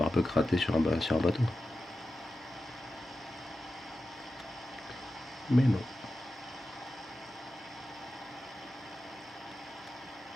barbecue raté sur un bateau. Mais non.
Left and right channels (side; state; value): both; normal; correlation 0.92